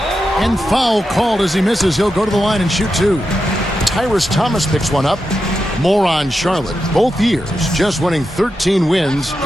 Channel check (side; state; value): both; normal; correlation 0.88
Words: and foul called as he misses. He'll go to the line and shoot 2. Tyrus Thomas picks one up. More on Charlotte. Both years just winning 13 wins